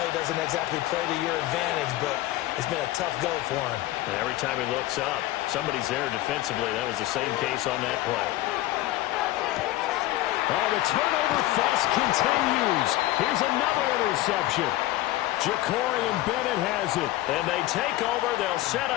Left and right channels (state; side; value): quieter; right; 16.3 dB